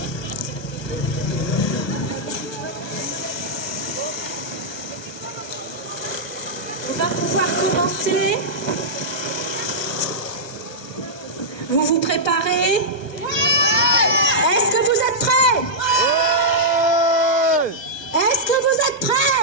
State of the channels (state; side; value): late; right; 1.2 ms